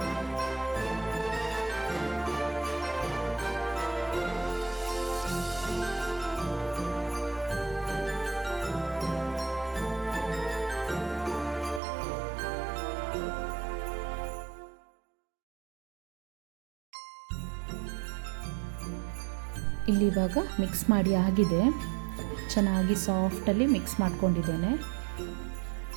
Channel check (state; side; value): drops out; left; at 11.8 s